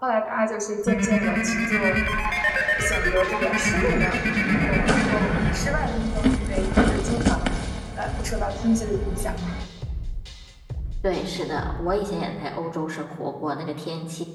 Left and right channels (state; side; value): identical; both; correlation 1.00